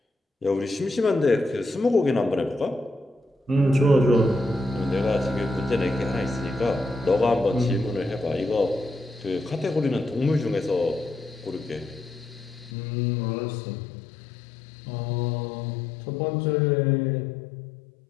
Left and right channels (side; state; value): right; drops out; at 12.7 s